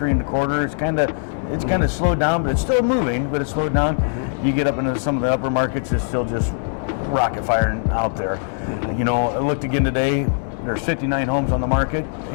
1/4. It's kind of slowed down, but it's still moving. But it's slowed down. You get up into some of the upper markets, it's still just rocket firing out there. You know, I looked again today. There's 59 homes on the market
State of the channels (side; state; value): right; silent; digital silence